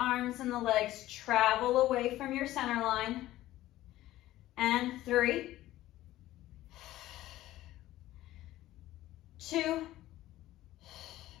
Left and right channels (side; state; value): right; quieter; 15.3 dB